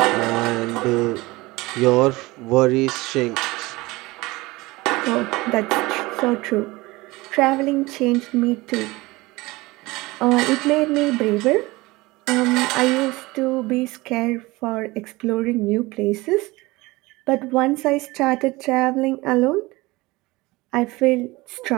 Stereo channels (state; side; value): quieter; left; 21.5 dB